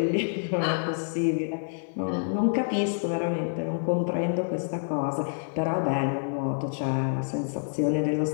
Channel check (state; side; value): silent; right; digital silence